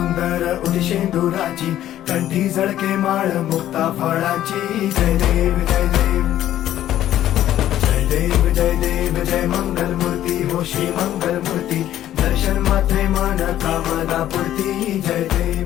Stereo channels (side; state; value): right; quieter; 12.4 dB